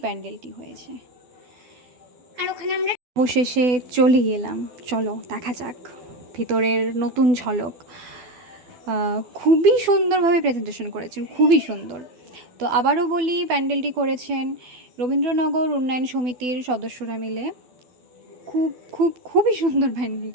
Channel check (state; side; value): late; left; 12 ms